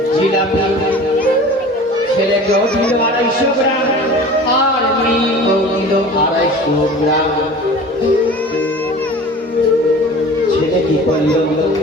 জিলাপি ছেলেকেও দিল 250 গ্রাম, আর মেয়েকেও দিল 250 গ্রাম। ছেলে কি করলো?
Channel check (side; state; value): both; normal; correlation 0.40